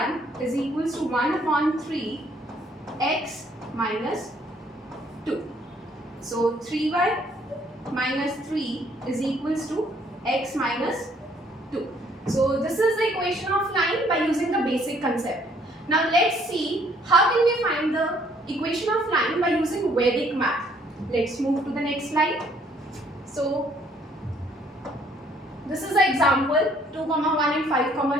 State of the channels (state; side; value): normal; both; correlation 0.63